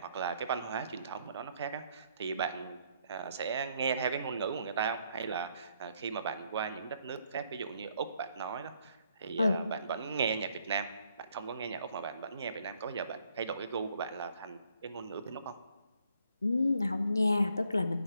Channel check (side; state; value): both; inverted; correlation -0.70